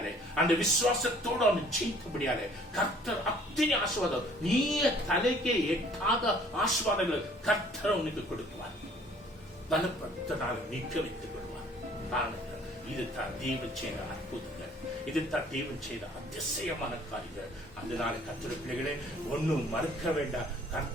அந்த விசுவாசத்தோடு அவனை ஜெயித்தபடியாலே கர்த்தர் அத்தனை ஆசீர்வாதம், நீ தலைக்கே எட்டாத ஆசீர்வாதங்கள் கர்த்தர் உனக்கு கொடுக்குவார். பலப்படுத்தினால் நிற்க வைத்துக் கொள்வார். இதுதான் தேவன் செய்த அற்புதங்கள், இதுதான் தேவன் செய்த அதிசயமான காரியங்கள். அதனால கர்த்தர் பிள்ளைகளே, ஒன்னும் மறுக்க வேண்டாம்.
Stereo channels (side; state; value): both; normal; correlation 0.56